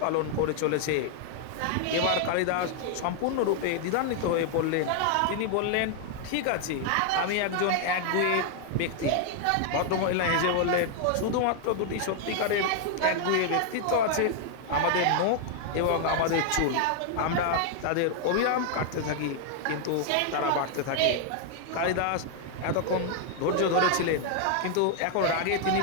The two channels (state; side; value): different; both; correlation 0.00